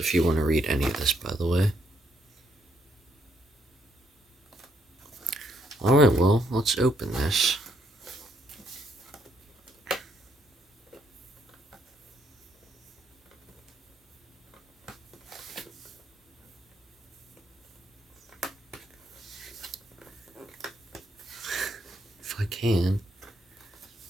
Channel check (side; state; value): both; normal; correlation 0.74